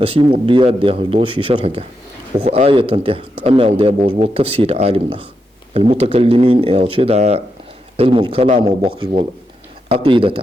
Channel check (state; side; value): normal; both; correlation 0.84